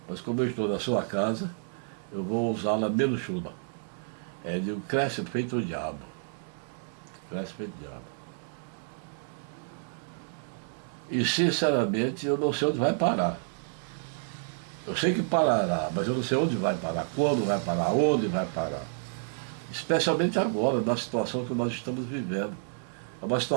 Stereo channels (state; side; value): silent; left; digital silence